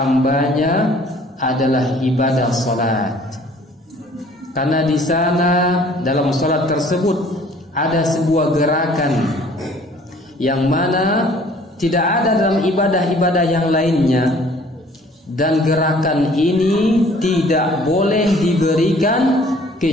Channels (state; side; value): normal; both; correlation 0.55